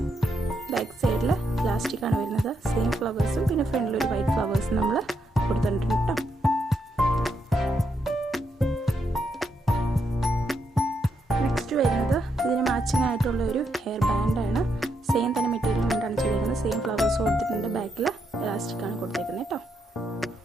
ബാക്ക് സൈഡിൽ പ്ലാസ്റ്റിക്കാണ് വരുന്നത്. സെയിം ഫ്ലവേഴ്സും പിന്നെ ഫ്രണ്ടിൽ ഒരു വൈറ്റ് ഫ്ലവേഴ്സും നമ്മൾ കൊടുത്തിട്ടുണ്ട് കേട്ടോ. നെക്സ്റ്റ് വരുന്നത് ഇതിന് മാച്ചിങ് ആയിട്ടുള്ള ഒരു ഹെയർ ബാൻഡാണ്. സെയിം തന്നെ മെറ്റീരിയൽ കൊണ്ടാണ് ചെയ്തിരിക്കുന്നത്. സെയിം ഫ്ലവേഴ്സ് കൊടുത്തിട്ടുണ്ട്. ബാക്കിൽ പ്ലാസ്റ്റിക്കാണ് കൊടുത്തേക്കുന്നത് കേട്ടോ.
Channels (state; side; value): normal; both; correlation 0.79